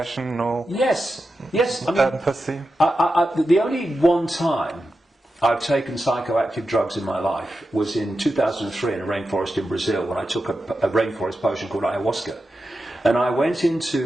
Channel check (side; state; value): both; normal; correlation 0.90